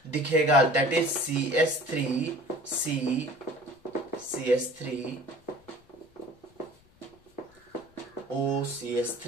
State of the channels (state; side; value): noise; left; rumble, 30 dB below the sound